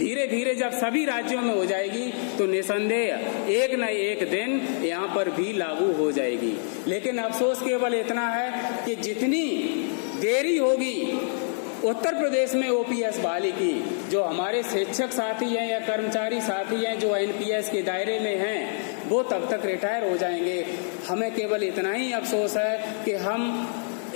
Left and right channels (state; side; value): silent; right; digital silence